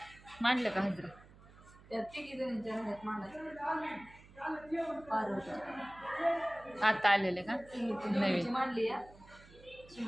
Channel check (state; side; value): noise; right; hum, 22 dB below the sound